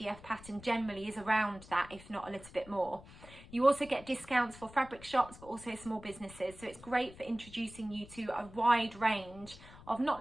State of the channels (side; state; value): left; noise; rumble, 19 dB below the sound